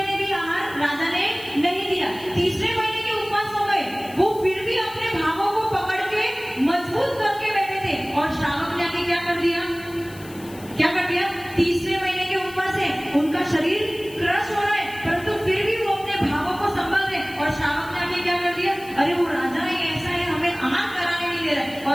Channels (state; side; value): noise; left; hiss, 20 dB below the sound